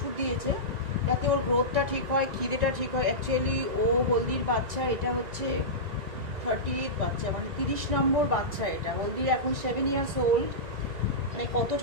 দিয়েছে যাতে ওর গ্রোথটা ঠিক হয়, খিদেটা ঠিক হয়। অ্যাকচুয়ালি ও হলদির বাচ্চা, এটা হচ্ছে 38 বাচ্চা, মানে 30 নম্বর বাচ্চা। এটা হলদির এখন 7 years old, মানে কত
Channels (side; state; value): left; late; 1.9 ms